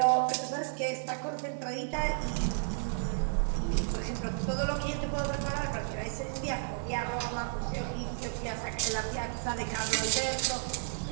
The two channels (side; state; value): left; silent; digital silence